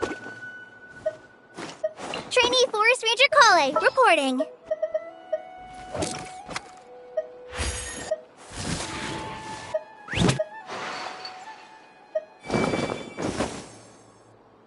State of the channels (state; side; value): identical; both; correlation 1.00